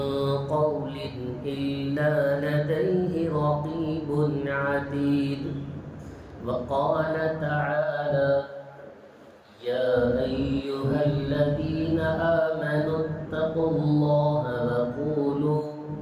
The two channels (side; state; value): both; identical; correlation 1.00